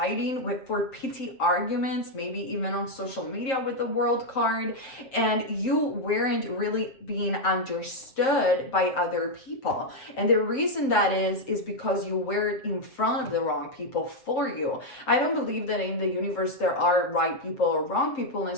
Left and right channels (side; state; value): right; late; 7.7 ms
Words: for petty arguments, maybe even on social media with the world card, and you weren't really being understood by other people. And the reason that is because you were in front of the wrong people for you. I don't believe that in the universe there are right people or wrong people